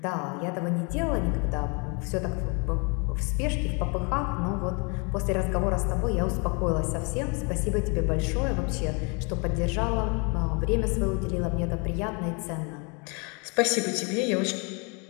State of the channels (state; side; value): quieter; right; 33.2 dB